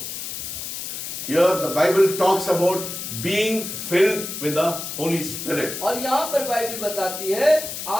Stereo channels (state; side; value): noise; left; hiss, 7 dB below the sound